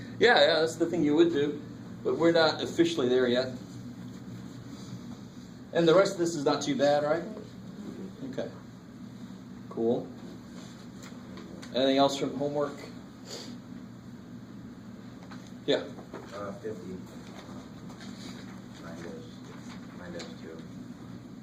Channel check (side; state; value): both; identical; correlation 1.00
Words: yeah, that's the thing you would do. But we're not officially there yet. And the rest of this is not too bad, right? Okay. Cool. Anything else from homework? Yeah. 50 minus 2.